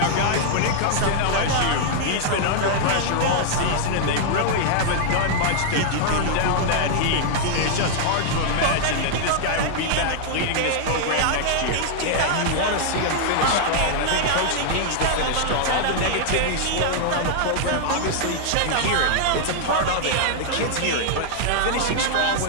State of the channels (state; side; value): different; both; correlation -0.01